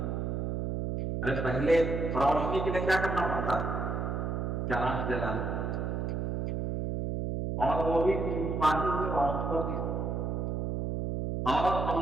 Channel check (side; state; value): right; noise; hum, 1 dB below the sound